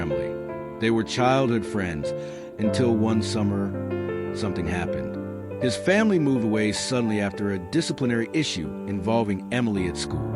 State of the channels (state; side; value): identical; both; correlation 1.00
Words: They were childhood friends until one summer, something happened. His family moved away suddenly after a disciplinary issue involving Emily at school.